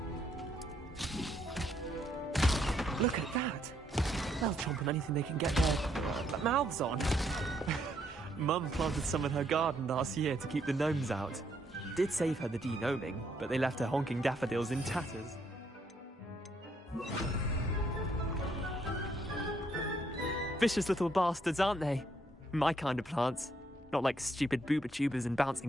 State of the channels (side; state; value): both; normal; correlation 0.72